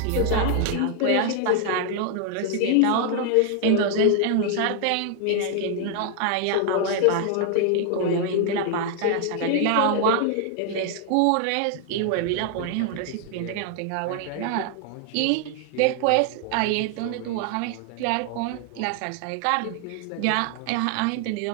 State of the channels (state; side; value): different; both; correlation 0.00